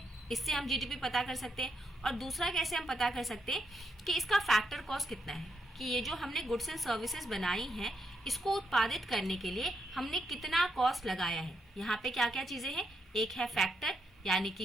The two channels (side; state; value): both; normal; correlation 0.80